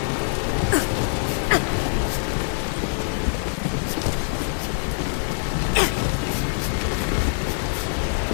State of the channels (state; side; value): silent; right; 58 dB below the other